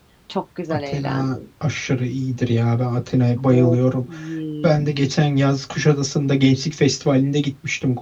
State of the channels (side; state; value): both; identical; correlation 1.00